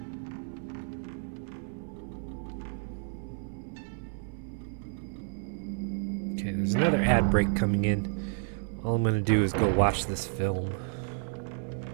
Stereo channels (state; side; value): silent; left; 57 dB below the other